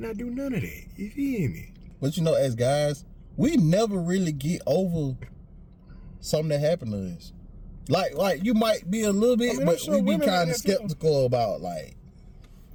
do none of that. You feel me? But you know, as guys, we never really get over something that happened to us. Like you might be a little bit, but we be kind of skeptical about like.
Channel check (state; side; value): identical; both; correlation 1.00